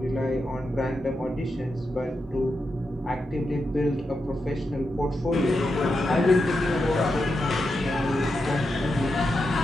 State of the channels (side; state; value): both; normal; correlation 0.87